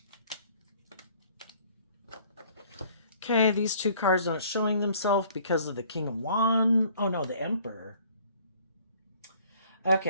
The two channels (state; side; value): inverted; both; correlation -0.56